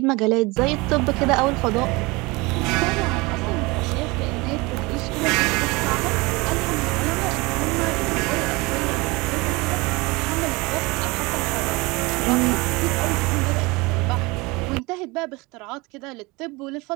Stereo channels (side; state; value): left; quieter; 24.4 dB